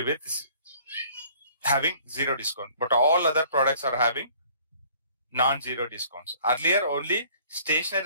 with having 0 discount, but all other products are having non-zero discounts. Earlier only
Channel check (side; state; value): both; inverted; correlation -0.55